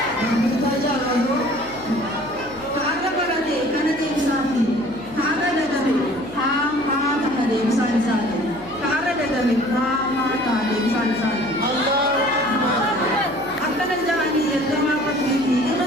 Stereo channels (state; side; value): noise; left; hum, 21 dB below the sound